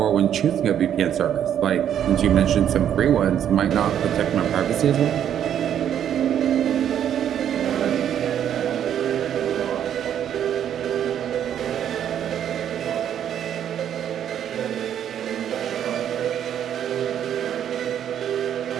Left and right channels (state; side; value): quieter; left; 9.7 dB